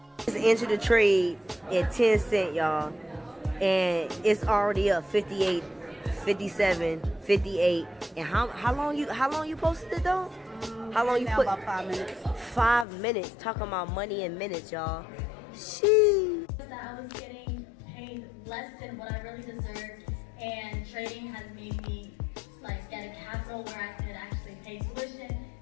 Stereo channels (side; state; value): right; drops out; at 12.9 s